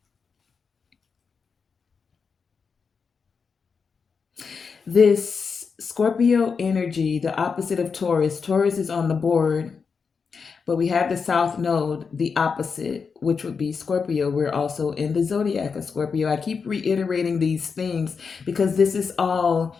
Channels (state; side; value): quieter; right; 5.5 dB